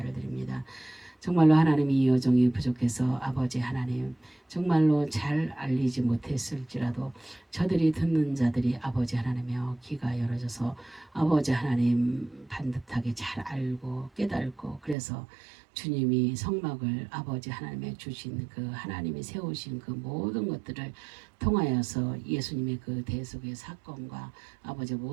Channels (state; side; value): drops out; left; at 15.0 s